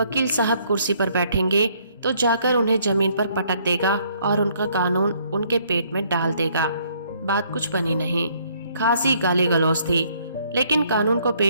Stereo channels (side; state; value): both; inverted; correlation -0.66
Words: साहब कुर्सी पर बैठेंगे, तो जाकर उन्हें जमीन पर पटक देगा और उनका कानून उनके पेट में डाल देगा। बात कुछ बनी नहीं, खासी गाली गलौज थी, लेकिन कानून को